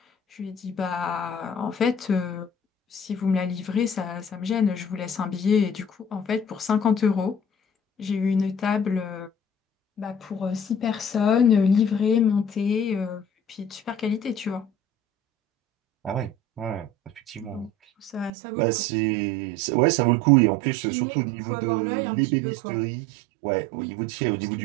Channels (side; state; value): left; drops out; at 18.3 s